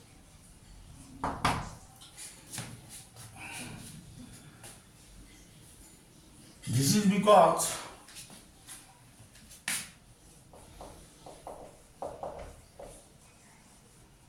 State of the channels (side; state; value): both; identical; correlation 1.00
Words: This is because